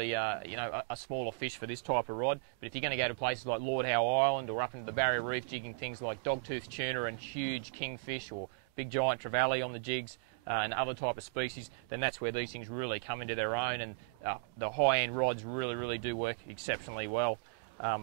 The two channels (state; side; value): quieter; left; 32.9 dB